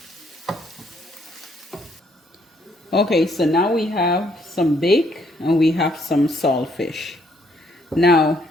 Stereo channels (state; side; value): normal; both; correlation 0.69